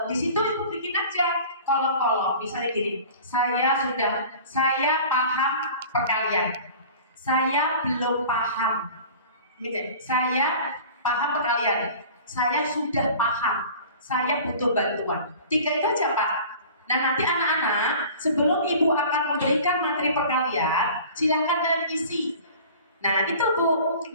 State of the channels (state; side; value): inverted; both; correlation -0.43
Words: Di situ Ibu bikin aja kolom-kolom. Misalnya gini, saya paham perkalian. Saya belum paham. Gitu. Saya paham perkalian. Saya sudah paham. Saya butuh bantuan. 3 itu aja Pak. Nah nanti anak-anak sebelum Ibu akan memberikan materi perkalian, silakan kalian isi. Nah itu Bu,